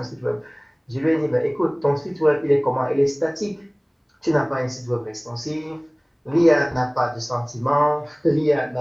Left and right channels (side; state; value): both; identical; correlation 1.00